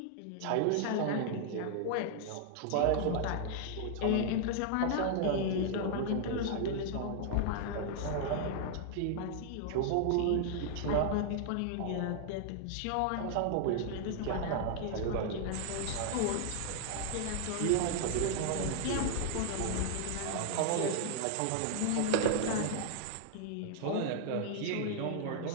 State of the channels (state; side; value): different; both; correlation -0.01